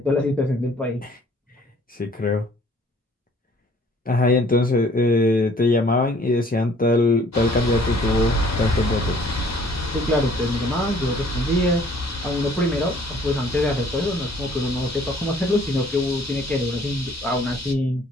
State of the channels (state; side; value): normal; both; correlation 0.57